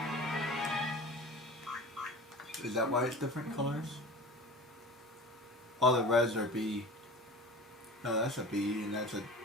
Is that why it's different colors? All the reds are B. No, that's a B, and that's a...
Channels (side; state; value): both; normal; correlation 0.36